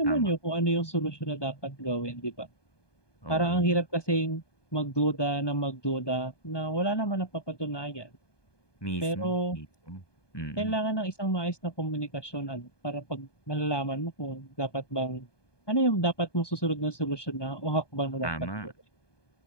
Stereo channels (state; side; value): late; right; 1.2 ms